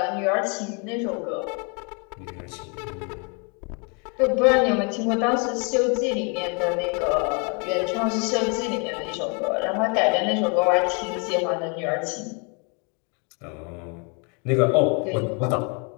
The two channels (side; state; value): right; quieter; 35.3 dB